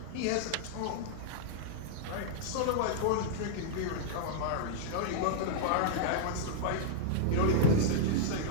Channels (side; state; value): both; different; correlation -0.02